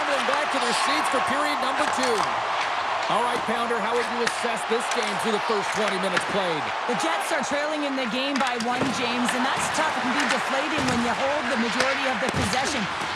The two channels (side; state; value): both; identical; correlation 1.00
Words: back to their seats for period number 2. All right, Pounder, how would you assess this game through the first 20 minutes played? The Jets are trailing in the game by 1, James, and that's tough. It can be deflating when you hold the majority of the possession.